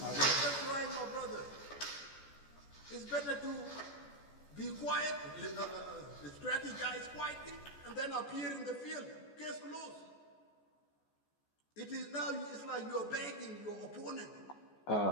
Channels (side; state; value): right; late; 14 ms